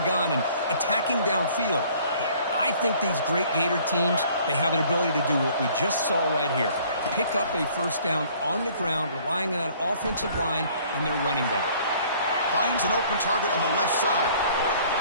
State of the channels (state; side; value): inverted; both; correlation -0.56